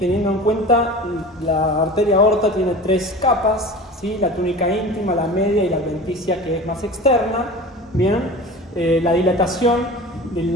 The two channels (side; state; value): both; normal; correlation 0.36